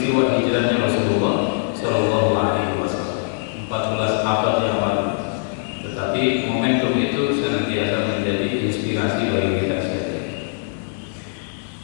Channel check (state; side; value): silent; right; digital silence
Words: hijrahnya Rasulullah Shallallahu Alaihi Wasallam, 14 abad yang lalu. Tetapi momentum itu senantiasa menjadi inspirasi bagi kita sekalian.